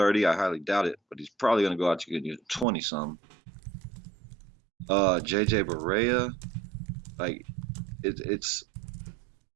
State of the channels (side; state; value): left; drops out; at 2.7 s